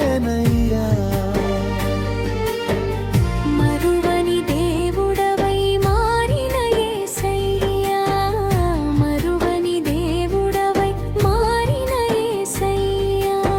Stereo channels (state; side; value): identical; both; correlation 1.00